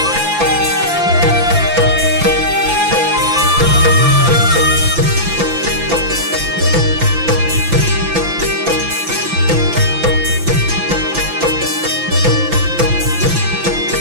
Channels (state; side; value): late; left; 5.9 ms